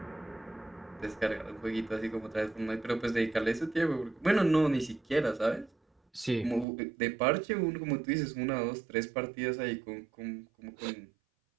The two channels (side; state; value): left; drops out; at 6.7 s